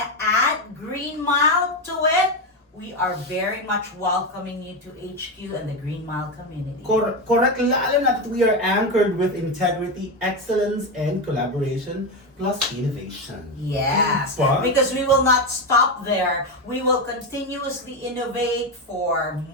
to add GreenMile to it, we are very much welcoming you to HQ and the GreenMile community. Correct. Lalo na that we are anchored with integrity, excellence, and collaboration, plus innovation. Yes, Diba? because we will not stop there. We will continuously innovate for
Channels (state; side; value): normal; both; correlation 0.12